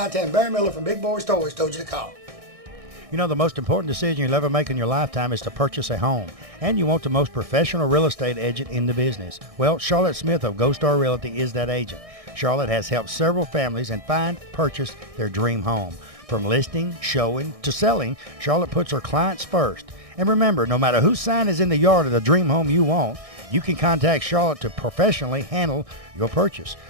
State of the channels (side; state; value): left; late; 1.6 ms